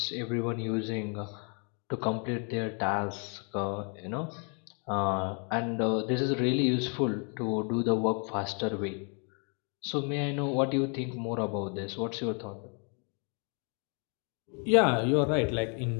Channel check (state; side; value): quieter; right; 38.8 dB